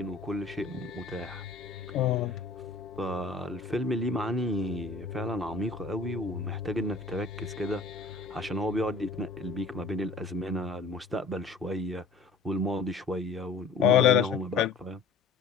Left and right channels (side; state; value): right; quieter; 4.1 dB